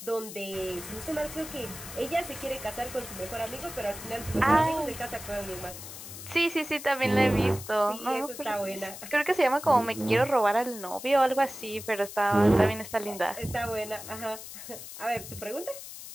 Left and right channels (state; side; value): noise; left; hiss, 12 dB below the sound